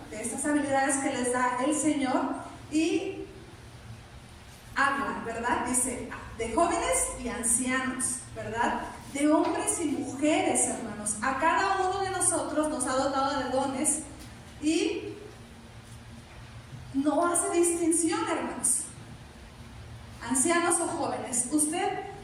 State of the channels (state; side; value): identical; both; correlation 1.00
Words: de estas habilidades que les da el Señor, y habla, ¿verdad? Dice, de jóvenes y ancianos, ¿verdad? De hombres y mujeres, hermanos. A cada uno de nosotros nos ha dotado de dones y no hace distinción, hermanos. Ancianos o jóvenes. ¿Usted